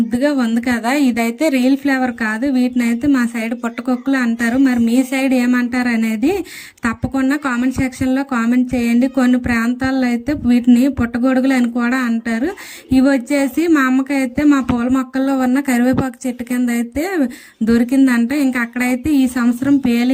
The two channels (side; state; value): both; identical; correlation 1.00